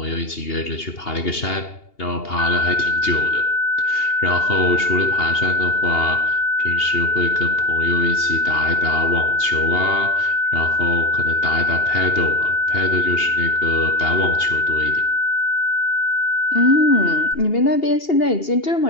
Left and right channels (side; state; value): right; late; 2.8 ms